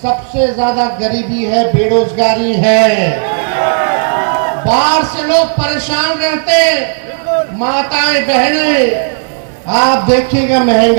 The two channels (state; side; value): silent; left; digital silence